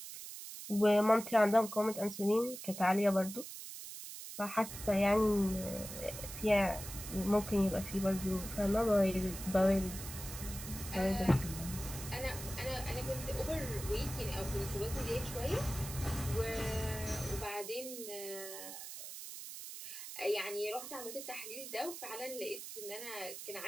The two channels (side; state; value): right; noise; hiss, 10 dB below the sound